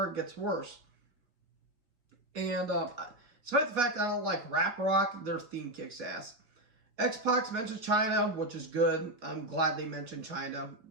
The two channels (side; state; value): left; late; 4.4 ms